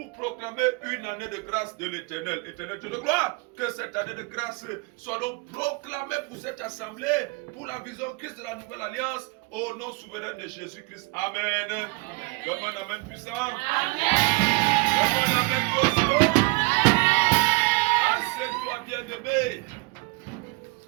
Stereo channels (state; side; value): quieter; left; 26.0 dB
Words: proclamer une année de grâce de l'Éternel. Éternel Dieu de gloire, que cette année de grâce soit donc proclamée pour cette assemblée, pour la vision Christ de la nouvelle alliance, au nom souverain de Jésus-Christ. Amen. Comme un amen puissant. Amen. Comme un amen puissant. Assieds-toi bien-aimé.